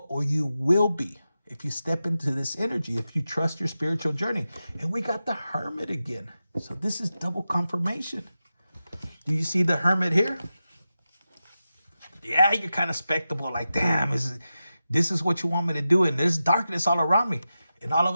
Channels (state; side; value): inverted; both; correlation -0.92